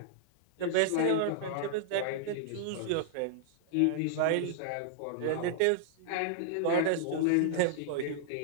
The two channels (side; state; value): both; different; correlation -0.01